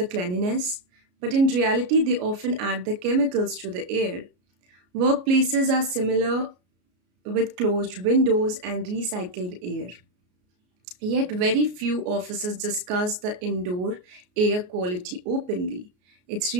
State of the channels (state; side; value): late; left; 33 ms